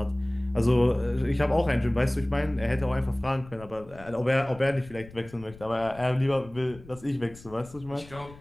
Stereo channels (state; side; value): noise; left; rumble, 20 dB below the sound